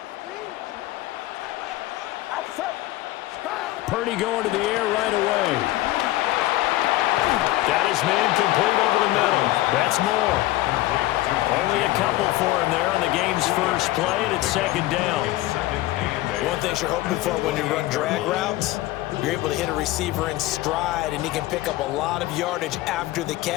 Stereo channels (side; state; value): right; quieter; 16.9 dB